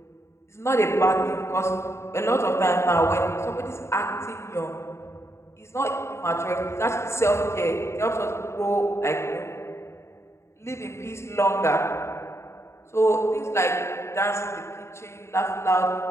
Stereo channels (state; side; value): late; right; 0.13 ms